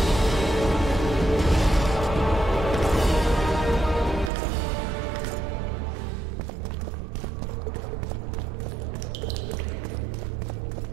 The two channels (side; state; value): left; drops out; at 4.3 s